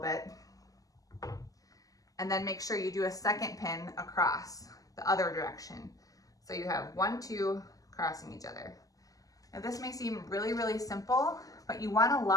And then make sure you do a second pin across the other direction. So you have 1, 2 crossing each other. Now this may seem really, really simple, but you want to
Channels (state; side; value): late; right; 0.17 ms